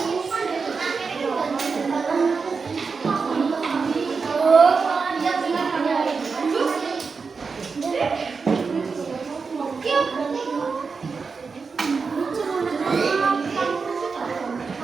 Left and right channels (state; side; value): quieter; left; 5.0 dB